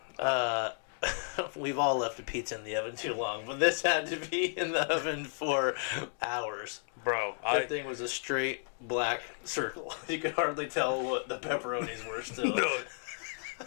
We've all left a pizza in the oven too long, but this had to be in the oven for hours. Bro, That thing was a straight black circle. You could hardly tell what the pepperonis were still. No,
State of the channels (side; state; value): right; silent; 56 dB below the other